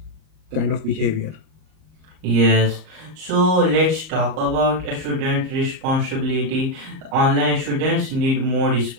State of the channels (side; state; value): left; late; 38 ms